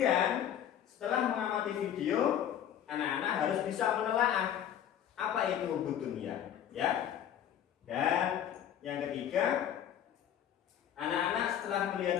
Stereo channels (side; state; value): right; quieter; 10.0 dB